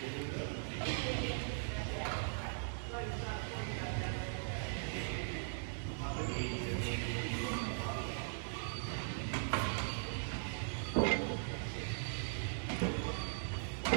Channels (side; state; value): left; silent; digital silence